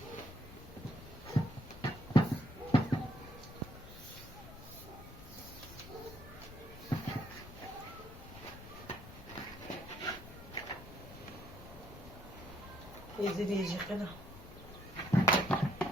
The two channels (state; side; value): normal; both; correlation 0.70